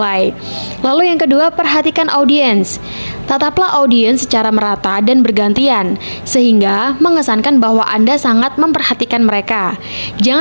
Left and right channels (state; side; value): inverted; both; correlation -1.00